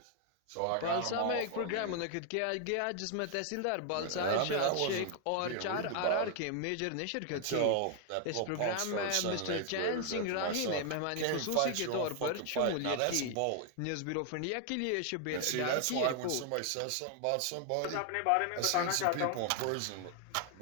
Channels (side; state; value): both; different; correlation 0.00